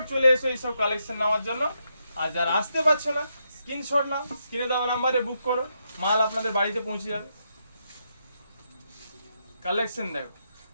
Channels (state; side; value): inverted; both; correlation -0.81